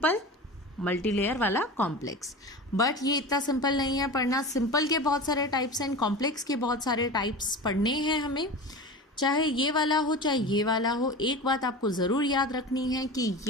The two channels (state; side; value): normal; both; correlation 0.31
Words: मल्टी लेयर वाला कॉम्प्लेक्स। बट ये इतना सिंपल नहीं है पढ़ना। सिंपल के बहुत सारे टाइप्स हैं, कॉम्प्लेक्स के बहुत सारे टाइप्स पढ़ने हैं हमें, चाहे ये वाला हो चाहे ये वाला हो। एक बात आपको ज़रूर याद रखनी है कि